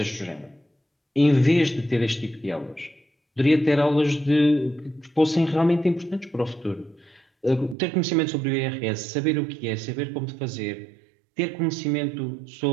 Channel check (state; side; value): drops out; left; at 7.8 s